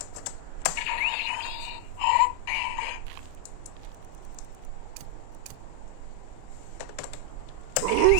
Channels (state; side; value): different; both; correlation 0.00